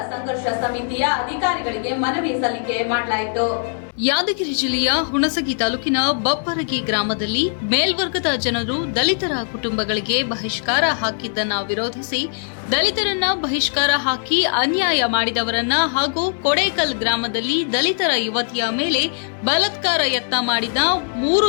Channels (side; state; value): right; silent; 65 dB below the other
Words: ಸಂಘರ್ಷ ಸಮಿತಿಯ ಅಧಿಕಾರಿಗಳಿಗೆ ಮನವಿ ಸಲ್ಲಿಕೆ ಮಾಡಲಾಯಿತು. ಯಾದಗಿರಿ ಜಿಲ್ಲೆಯ ಹುಣಸಗಿ ತಾಲೂಕಿನ ಬಪ್ಪರಗಿ ಗ್ರಾಮದಲ್ಲಿ ಮೇಲ್ವರ್ಗದ ಜನರು ದಲಿತರ ಕುಟುಂಬಗಳಿಗೆ ಬಹಿಷ್ಕಾರ ಹಾಕಿದ್ದನ್ನು ವಿರೋಧಿಸಿ ದಲಿತರನ್ನ ಬಹಿಷ್ಕಾರ ಹಾಕಿ ಅನ್ಯಾಯ ಮಾಡಿದವರನ್ನ ಹಾಗೂ ಕೊಡೇಕಲ್ ಗ್ರಾಮದಲ್ಲಿ ದಲಿತರ ಯುವತಿಯ ಮೇಲೆ ಬಲಾತ್ಕಾರ ಯತ್ನ ಮಾಡಿದ